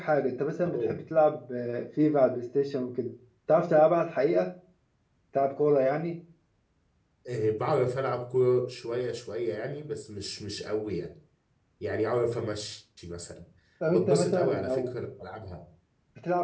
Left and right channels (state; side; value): identical; both; correlation 1.00